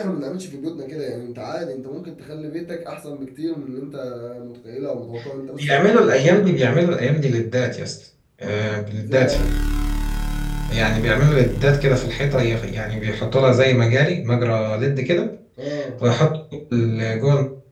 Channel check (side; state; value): both; identical; correlation 1.00